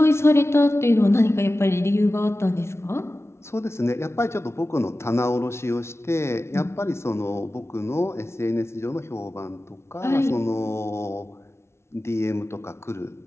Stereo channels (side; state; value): right; late; 0.13 ms